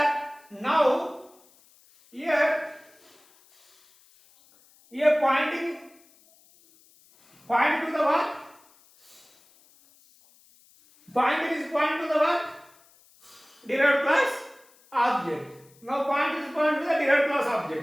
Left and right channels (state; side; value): noise; left; hiss, 30 dB below the sound